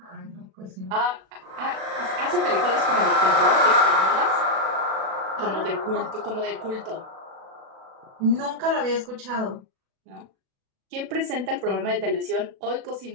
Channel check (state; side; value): late; left; 37 ms